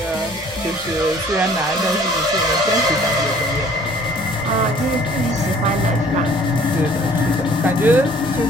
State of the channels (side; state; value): both; normal; correlation 0.54